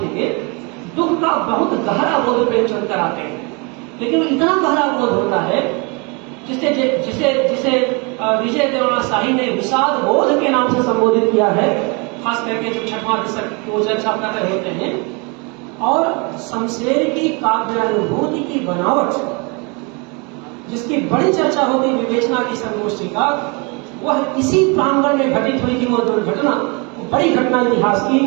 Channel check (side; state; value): left; quieter; 30.8 dB